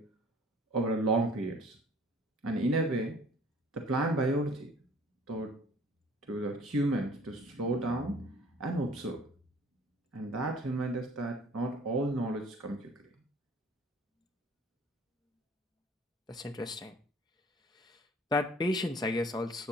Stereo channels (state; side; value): normal; both; correlation 0.52